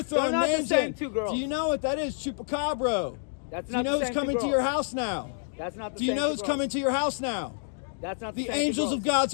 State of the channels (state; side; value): silent; right; digital silence